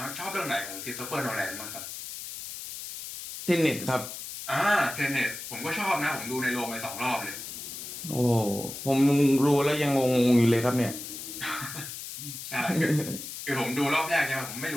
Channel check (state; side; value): noise; left; hiss, 9 dB below the sound